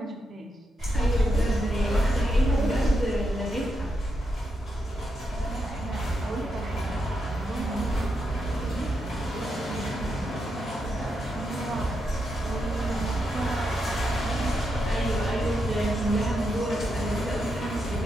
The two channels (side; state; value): both; normal; correlation 0.83